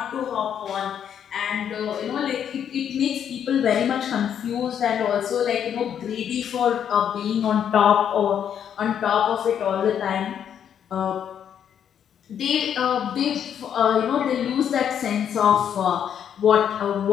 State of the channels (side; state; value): right; quieter; 8.8 dB